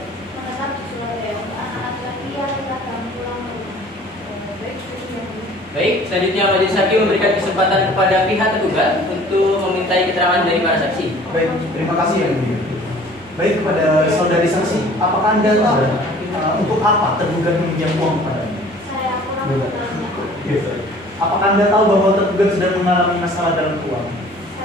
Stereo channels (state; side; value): normal; both; correlation 0.50